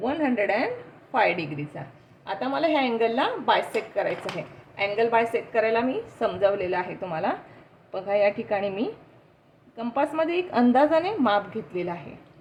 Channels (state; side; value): identical; both; correlation 1.00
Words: 105 डिग्रीचा. आता मला ह्या अँगलला बायसेक्ट करायचं आहे. अँगल बायसेक्ट करायला मी समजावलेलं आहे तुम्हाला. बघा या ठिकाणी मी कंपासमध्ये एक अंदाजाने माप घेतलेलं आहे.